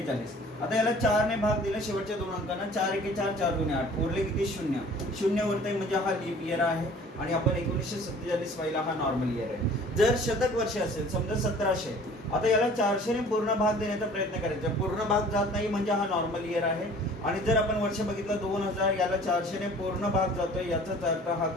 आता याला 4 ने भाग दिला शेवटच्या दोन अंकांना, 4 एके 4, 4 दुने 8, उरले किती शून्य उरतंय, म्हणजे हा लीप इयर आहे. आणि आपण 1947 पाहिला, हा नॉर्मल इयर आहे. जर शतक वर्ष असेल, समजा 1700, आता याला 400 ने पूर्ण भाग देण्याचा प्रयत्न करायचा. पूर्ण भाग जात नाही म्हणजे हा नॉर्मल इयर आहे. आणि जर आपण वर्ष बघितलं 2000, याला 400 ने पूर्ण भाग जातोय, याचाच अर्थ हा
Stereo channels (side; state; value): both; normal; correlation 0.49